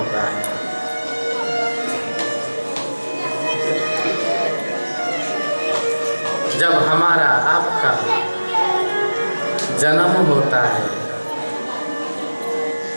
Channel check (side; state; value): both; inverted; correlation -1.00